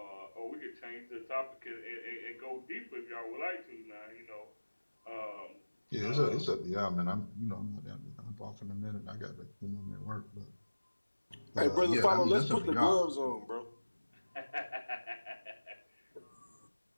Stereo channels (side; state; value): both; inverted; correlation -1.00